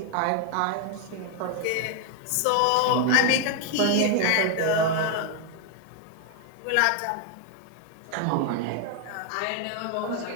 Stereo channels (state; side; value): different; both; correlation 0.00